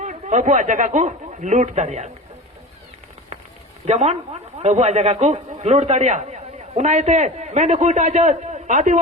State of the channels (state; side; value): normal; both; correlation 0.32